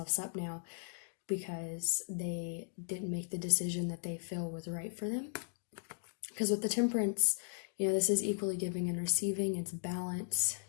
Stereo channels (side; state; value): right; silent; digital silence